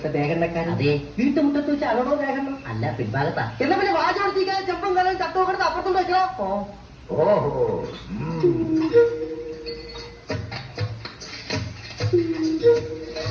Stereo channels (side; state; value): both; identical; correlation 1.00